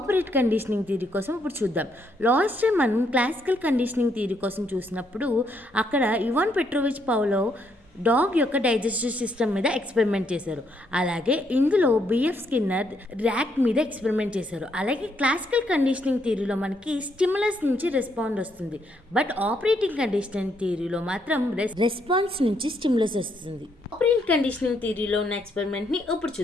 conditioning theory కోసం ఇప్పుడు చూద్దాం. లాస్ట్ టైం మనం క్లాసికల్ కండిషనింగ్ థియరీ కోసం చూసినప్పుడు అక్కడ ఇవాన్ పెట్రోవిచ్ పౌలోవ్ డాగ్ యొక్క డైజెస్టివ్ సిస్టమ్ మీద ఎక్స్పెరిమెంట్ చేశారు. అలాగే ఇందులో బిఎఫ్ స్కిన్నర్ ర్యాట్ మీద ఎక్స్పెరిమెంట్ చేశారు. అలాగే క్లాసికల్ కండిషనింగ్ థియరీలో మనకి స్టిమ్యులస్ నుంచి రెస్పాండ్ వస్తుంది, బట్ ఆపరేటింగ్ కండిషనింగ్ థియరీలో మాత్రం రెస్పాన్స్ నుంచి స్టిమ్యులస్ వస్తుంది. ఆపరెంట్ కండిషనింగ్ థియరీలో ఉన్న ఎక్స్పెరిమెంట్ని ఇప్పుడు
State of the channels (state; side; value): normal; both; correlation 0.74